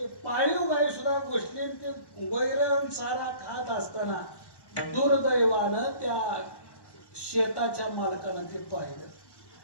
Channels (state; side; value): late; right; 1.1 ms